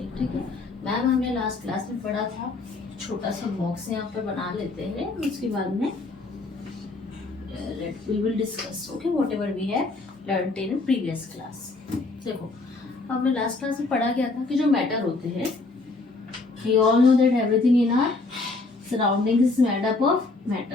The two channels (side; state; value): right; quieter; 3.5 dB